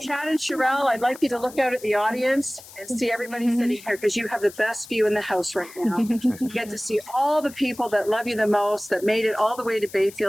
Chad and Shyrille, I'd like you to look out at the audience and see everybody sitting here because you have the best view in the house right now. You get to see all the people that love you the most, that made it all the way to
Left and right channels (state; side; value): noise; left; hiss, 19 dB below the sound